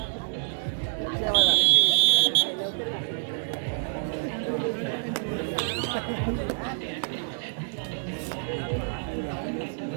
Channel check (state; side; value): silent; left; digital silence